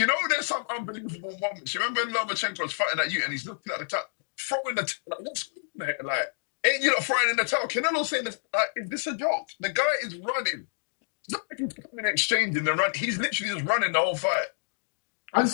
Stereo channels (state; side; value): silent; right; digital silence